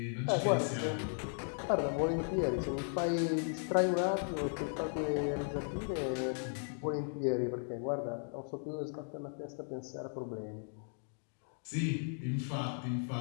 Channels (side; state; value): right; silent; 53 dB below the other